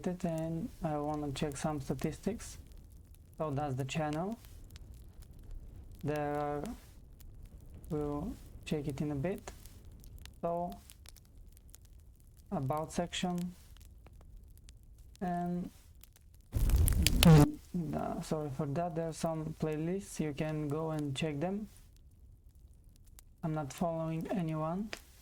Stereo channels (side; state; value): both; identical; correlation 1.00